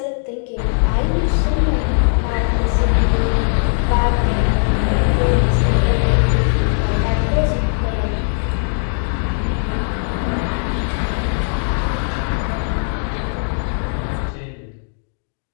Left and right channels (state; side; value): silent; right; 66 dB below the other